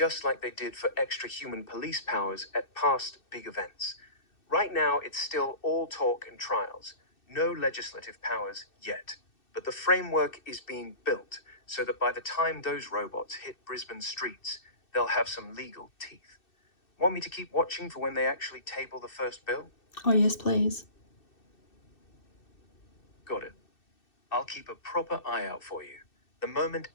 like they did for extra human police powers at past big events. Right now, it's still all talk and trials, no legislative powers yet. But the framework is being built so that by the time those robots hit Brisbane streets, they'll have some legal teeth. Want me to keep watching for when they actually table the first bill? Oh, yes, please. Got it. I'll keep a proper eye out for you. The moment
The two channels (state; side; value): late; right; 2.6 ms